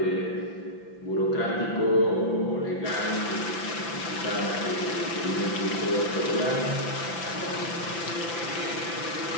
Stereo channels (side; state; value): right; late; 5.9 ms